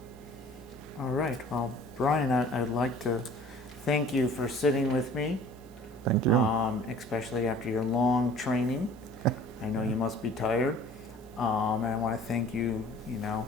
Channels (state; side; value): noise; right; hiss, 28 dB below the sound